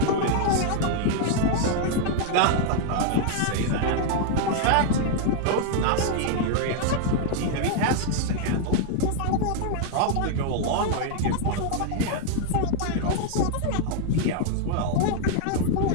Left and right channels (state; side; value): different; both; correlation 0.00